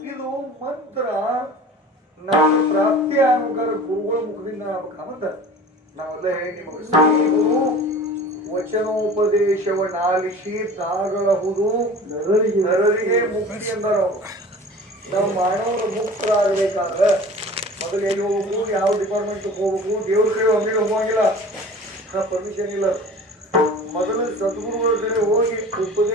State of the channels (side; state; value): both; normal; correlation 0.41